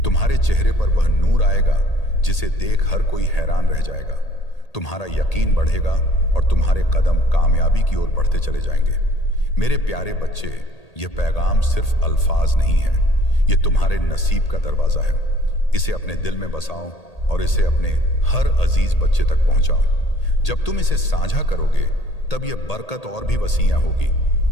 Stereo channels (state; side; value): late; right; 1.8 ms